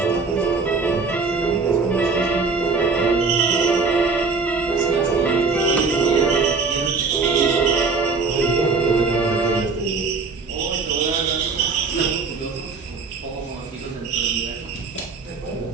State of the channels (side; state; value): left; quieter; 4.4 dB